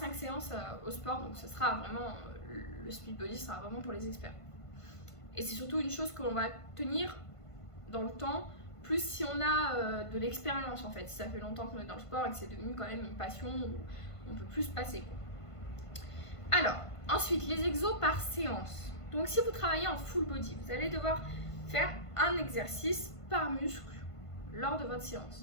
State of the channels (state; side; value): late; right; 1.5 ms